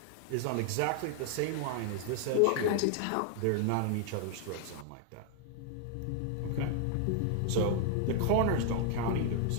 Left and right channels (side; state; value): both; different; correlation 0.00